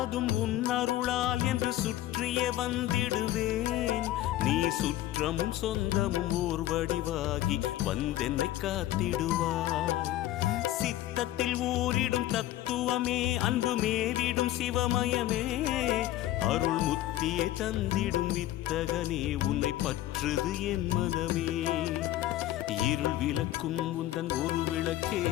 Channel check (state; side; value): quieter; right; 14.4 dB